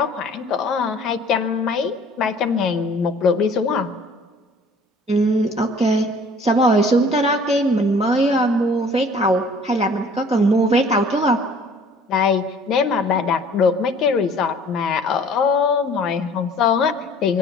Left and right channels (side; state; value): both; normal; correlation 0.52